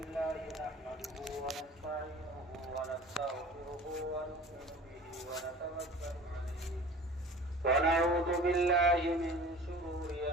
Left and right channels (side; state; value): both; normal; correlation 0.42